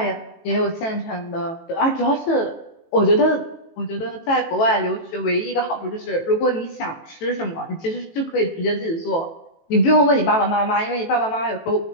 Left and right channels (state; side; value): late; right; 18 ms